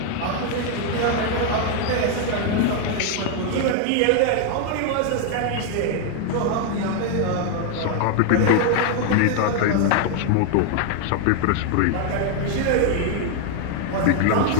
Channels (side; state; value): both; different; correlation 0.00